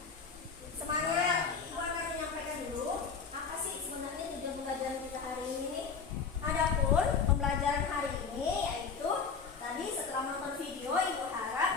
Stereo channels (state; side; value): quieter; right; 5.6 dB